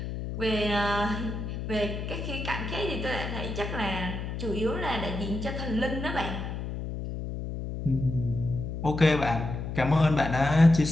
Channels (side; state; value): left; noise; hum, 5 dB below the sound